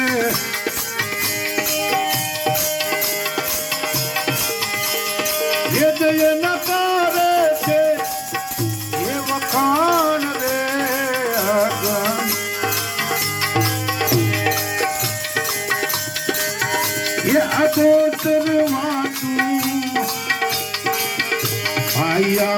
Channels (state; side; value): identical; both; correlation 1.00